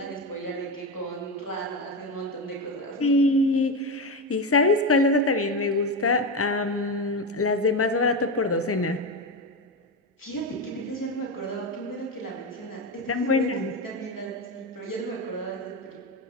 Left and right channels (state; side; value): normal; both; correlation 0.15